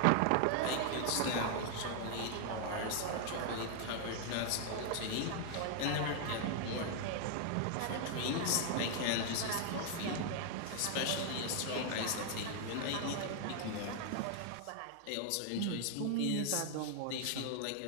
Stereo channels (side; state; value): both; different; correlation 0.00